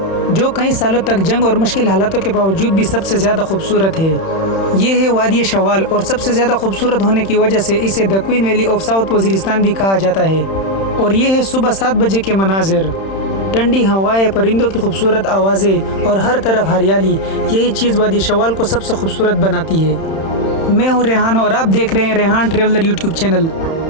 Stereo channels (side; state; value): right; late; 31 ms